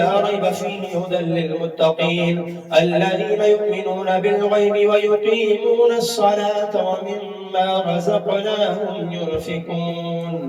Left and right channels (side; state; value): both; identical; correlation 1.00